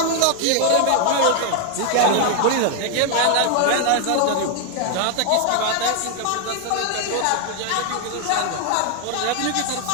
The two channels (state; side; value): different; both; correlation 0.00